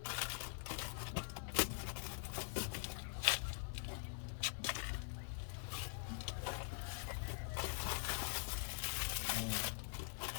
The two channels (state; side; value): silent; right; digital silence